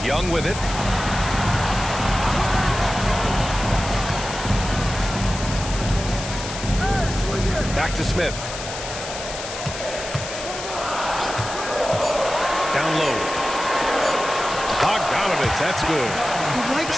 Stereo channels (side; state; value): left; noise; hiss, 9 dB below the sound